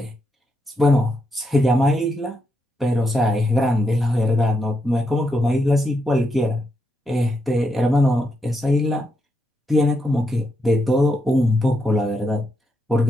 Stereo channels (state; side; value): normal; both; correlation 0.82